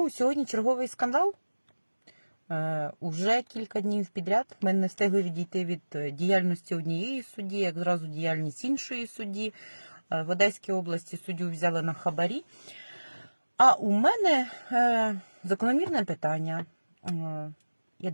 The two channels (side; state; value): both; inverted; correlation -1.00